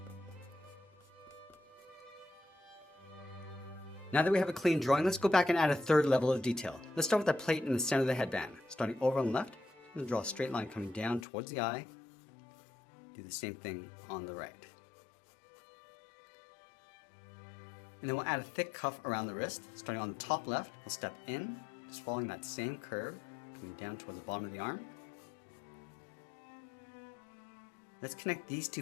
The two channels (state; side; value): drops out; right; at 11.2 s